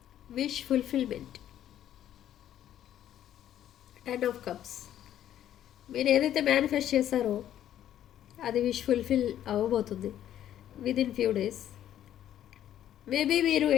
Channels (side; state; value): right; quieter; 11.3 dB